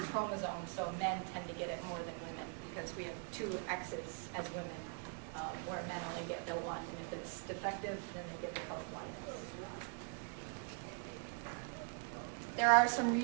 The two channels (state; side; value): quieter; left; 36.6 dB